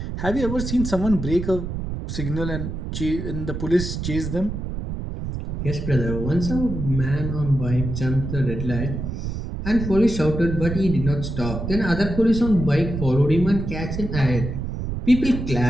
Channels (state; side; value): noise; right; rumble, 5 dB below the sound